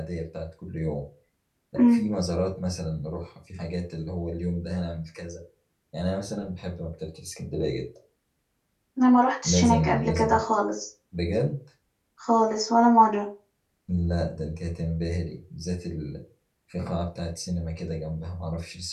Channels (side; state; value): both; identical; correlation 1.00